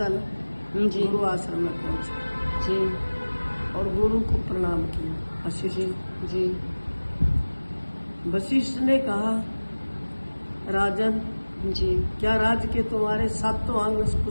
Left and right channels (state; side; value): inverted; both; correlation -1.00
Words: जी। गुरु आश्रम में पहुंचे जी। और गुरु को प्रणाम किया। वशिष्ठ जी। वशिष्ठ ने कहा, राजन, जी। क्या राज्य के तुम्हारे 7 अंग